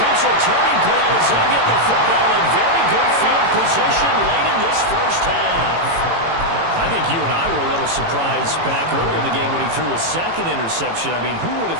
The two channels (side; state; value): left; late; 18 ms